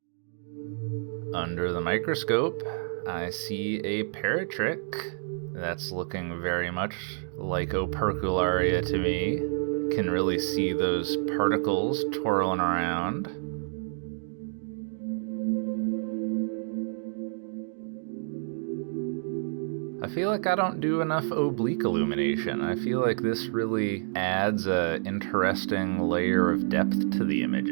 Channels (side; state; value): left; silent; digital silence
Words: Under the microscope, I see a paratrick. That's looking very much like Opercularia to me. Can really see those particles twirling around. I feel like I don't do enough oblique illumination. I feel like this really adds an interesting layer of depth to the